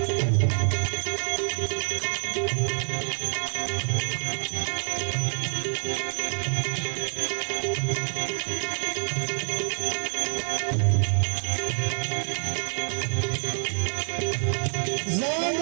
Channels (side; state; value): left; silent; 59 dB below the other